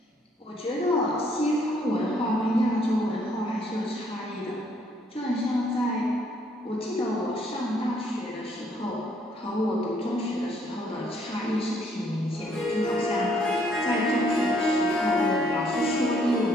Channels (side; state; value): both; normal; correlation 0.67